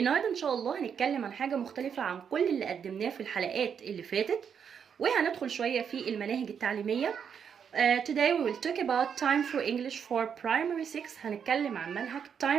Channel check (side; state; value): left; quieter; 7.4 dB